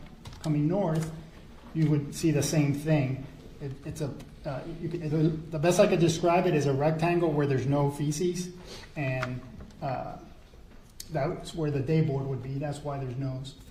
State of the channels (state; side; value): identical; both; correlation 1.00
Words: coming north, you would see the same thing. The best I could describe it is a rectangle where there's no feces, and that's where the day board would be. That's why there's no